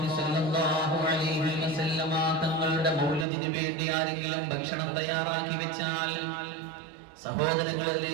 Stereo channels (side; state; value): left; drops out; at 3.2 s